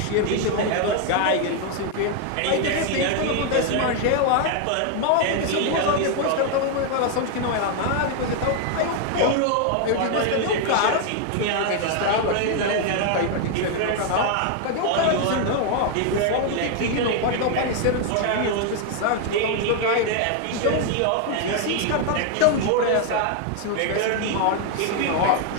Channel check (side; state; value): both; different; correlation 0.00